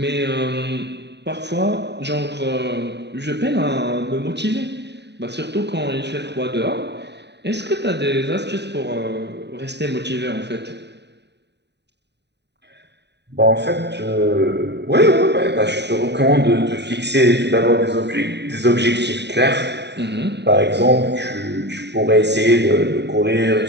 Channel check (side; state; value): left; late; 0.50 ms